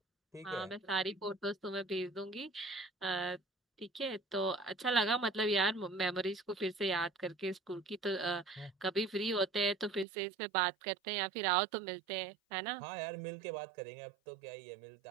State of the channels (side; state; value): left; drops out; at 10.1 s